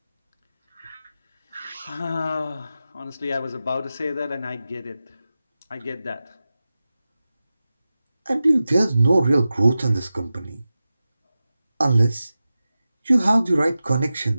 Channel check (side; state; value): both; inverted; correlation -0.94